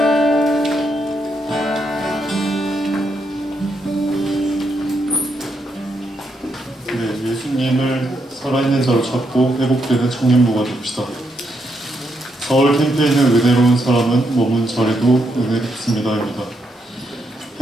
네, 예수님을 살아있는 자로 찾고 회복되는 청년부가 됩시다. 서울 캠프에 있는 은혜로운 사람은 머문 자리도 은혜롭습니다입니다.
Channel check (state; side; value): normal; both; correlation 0.79